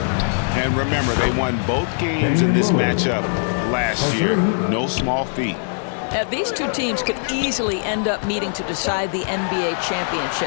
And remember, they won both games in this matchup last year. No small feat. These two teams could easily end up meeting to decide the NBA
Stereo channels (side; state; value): right; silent; digital silence